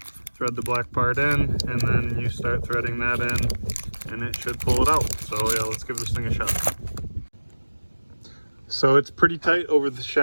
thread the black part in, and then you start threading that in, and it should pull it out. So yeah, let's give this thing a shot. So it's pretty tight over the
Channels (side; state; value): both; inverted; correlation -1.00